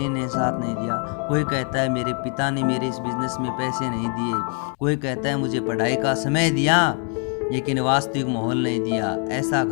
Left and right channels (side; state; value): right; quieter; 39.3 dB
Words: ने साथ नहीं दिया, कोई कहता है मेरे पिता ने मेरे इस बिजनेस में पैसे नहीं दिए, कोई कहता है मुझे पढ़ाई का समय दिया लेकिन वास्तविक माहौल नहीं दिया, ऐसा